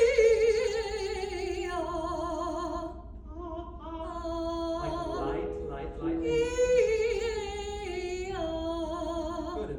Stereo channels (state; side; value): identical; both; correlation 1.00